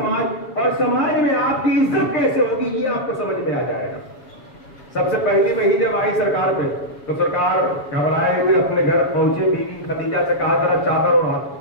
اور سماج میں آپ کی عزت کیسے ہوگی، یہ آپ کو سمجھ میں آ جائے گا۔ سب سے پہلی وحی جب آئی سرکار پہ تو سرکار گھبرائے ہوئے اپنے گھر پہنچے، بیوی خدیجہ سے کہا ذرا چادر اڑا۔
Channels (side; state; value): right; late; 7.1 ms